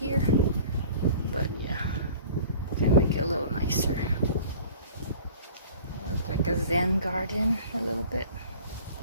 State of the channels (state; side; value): inverted; both; correlation -0.45